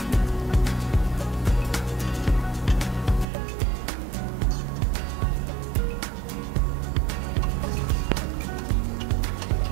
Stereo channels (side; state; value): left; drops out; at 3.2 s